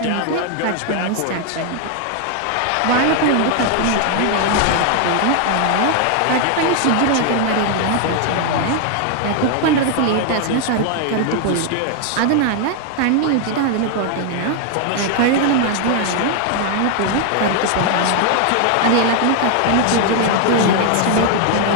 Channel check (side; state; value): both; different; correlation 0.00